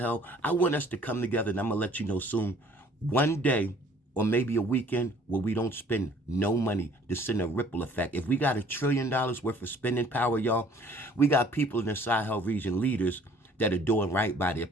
I want us to come together, and I'm going to let you know soon, one day or maybe a weekend where we don't spend no money to send a ripple effect. If we got $1 trillion worth of spending power, y'all, we got people in the Sahel region, leaders, that are doing right by their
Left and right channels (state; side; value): normal; both; correlation 0.56